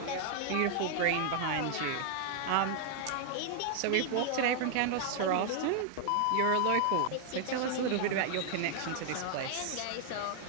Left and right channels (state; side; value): different; both; correlation 0.00